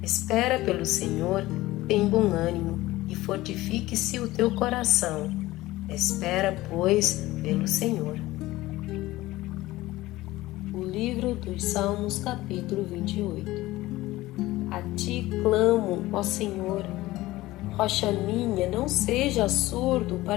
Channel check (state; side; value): quieter; right; 17.7 dB